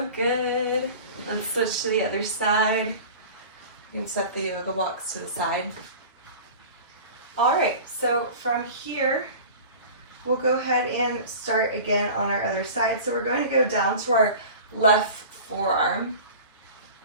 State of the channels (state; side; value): inverted; both; correlation -0.38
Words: good. Let's switch to the other side. You can step the yoga blocks to the side. All right, so from here, we'll go ahead and start again on our other side. So we're going to go down to our left forearm,